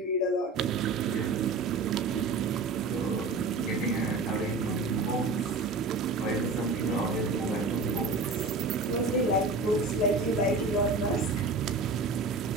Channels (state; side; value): quieter; left; 3.6 dB